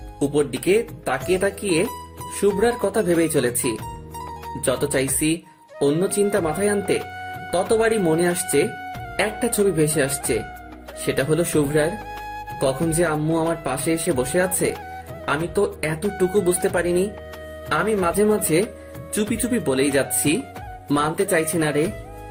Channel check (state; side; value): identical; both; correlation 1.00